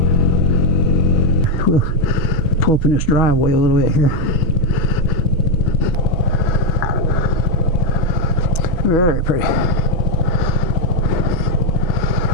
We'll pull up in this driveway a little bit here. Very pretty.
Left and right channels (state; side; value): late; right; 6.1 ms